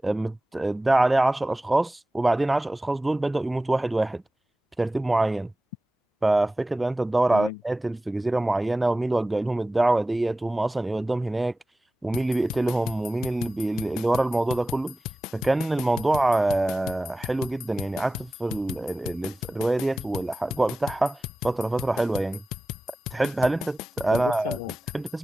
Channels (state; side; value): normal; both; correlation 0.96